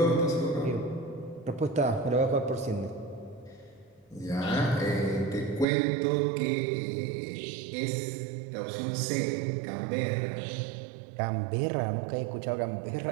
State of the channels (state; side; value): drops out; left; at 5.7 s